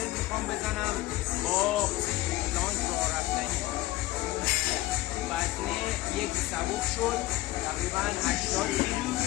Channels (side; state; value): right; quieter; 17.5 dB